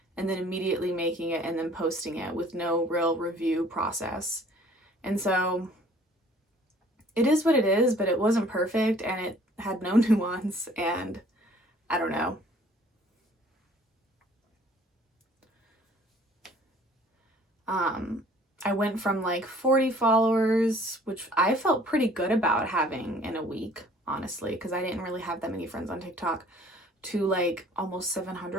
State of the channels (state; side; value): normal; both; correlation 0.55